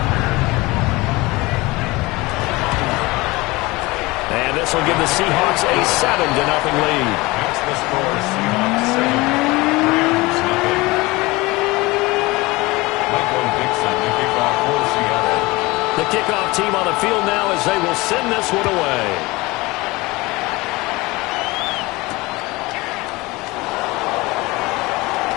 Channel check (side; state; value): right; quieter; 22.2 dB